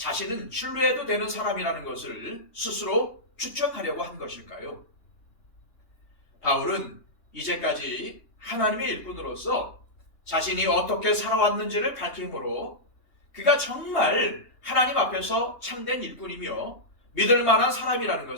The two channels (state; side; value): late; right; 3.2 ms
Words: 신뢰해도 되는 사람이라는 것을 스스로 추천하려고 한 것일까요? 바울은 이제까지 하나님의 일꾼으로서 자신이 어떻게 살아왔는지를 밝힘으로 그가 정말 하나님 앞에서 참된 일꾼이며 믿을 만한 사람이라는